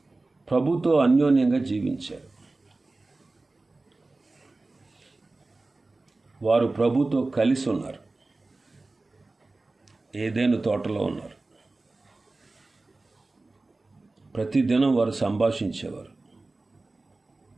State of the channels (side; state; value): left; quieter; 3.3 dB